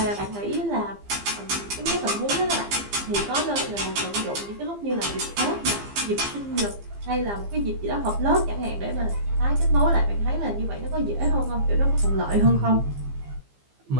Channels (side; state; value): left; late; 15 ms